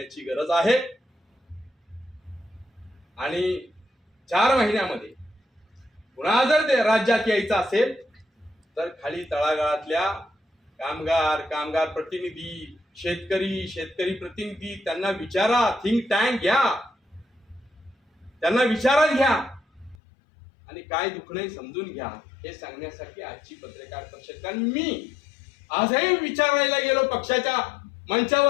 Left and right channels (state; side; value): drops out; right; at 20.0 s